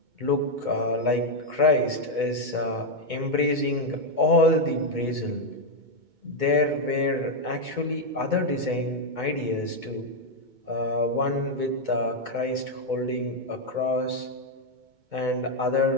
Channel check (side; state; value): left; late; 2.2 ms